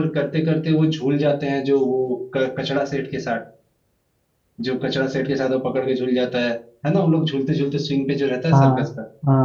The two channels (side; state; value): both; identical; correlation 1.00